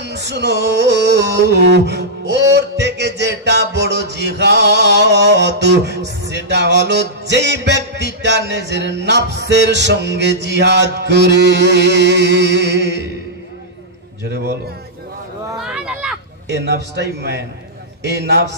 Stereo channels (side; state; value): both; normal; correlation -0.11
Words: শুনো, ওর থেকে যেটা বড় জিহাদ সেটা হলো যেই ব্যক্তিটা নিজের নফসের সঙ্গে জিহাদ করে। জোরে বলো সুবহানাল্লাহ। এই নফসটাই ম্যান, এই